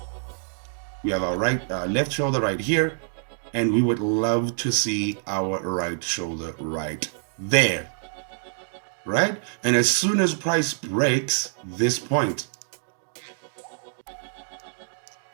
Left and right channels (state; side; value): silent; left; digital silence